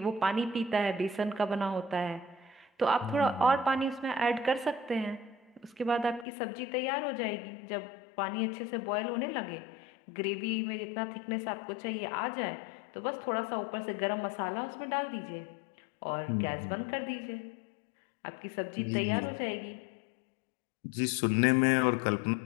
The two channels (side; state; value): right; drops out; at 6.2 s